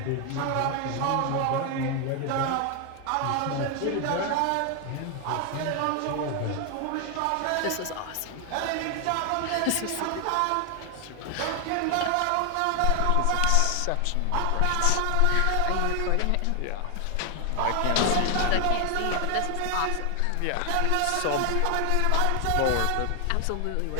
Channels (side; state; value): both; different; correlation 0.00